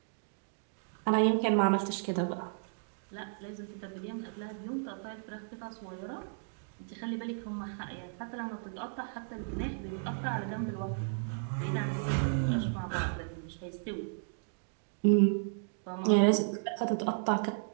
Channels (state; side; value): silent; left; digital silence